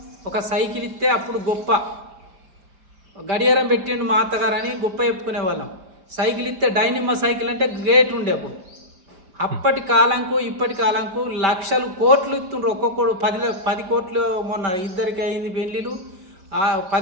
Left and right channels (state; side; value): late; left; 5.2 ms